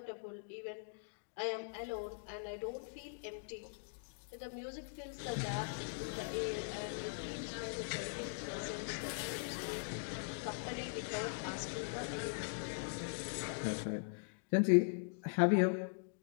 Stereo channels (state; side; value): silent; right; digital silence